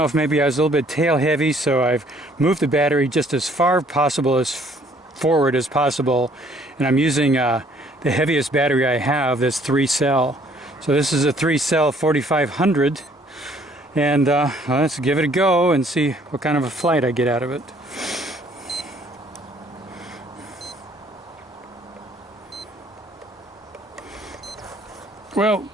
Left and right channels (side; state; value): both; normal; correlation 0.61